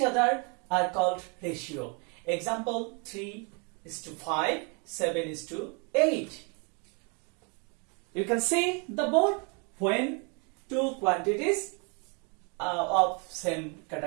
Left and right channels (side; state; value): left; quieter; 34.9 dB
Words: other are called ratio. Example 3:5, 7:8. You can see the board. When two quantities of same